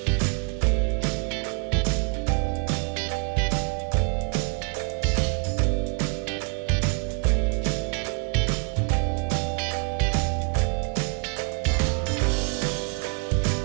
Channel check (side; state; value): left; quieter; 36.3 dB